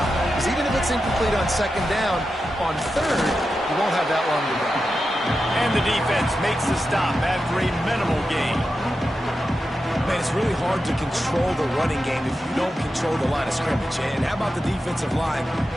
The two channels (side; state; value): both; normal; correlation 0.90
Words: Because even if it's incomplete on second down, on third, you won't have that long to go. And the defense makes the stop after a minimal gain. Man, it's really hard to control the running game if you don't control the line of scrimmage. And how about the defensive line